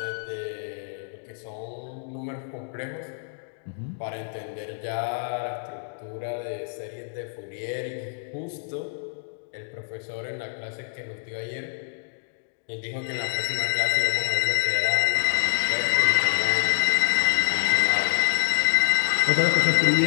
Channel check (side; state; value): right; silent; digital silence